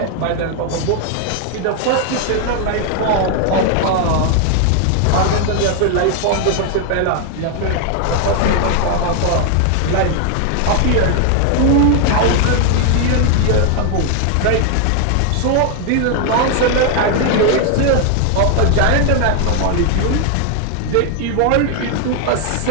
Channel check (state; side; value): different; both; correlation 0.00